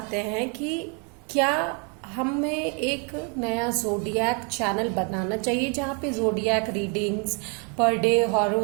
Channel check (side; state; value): left; quieter; 36.7 dB